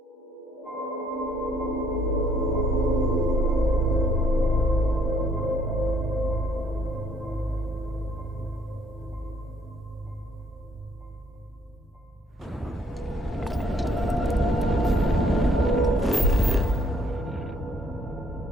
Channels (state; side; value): normal; both; correlation 0.65